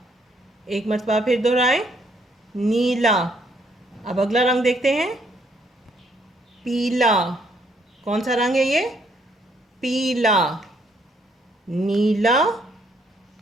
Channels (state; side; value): normal; both; correlation 0.69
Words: एक मरतबा फिर दोहराएं, नीला। अब अगला रंग देखते हैं, पीला। कौन सा रंग है ये? पीला। नीला,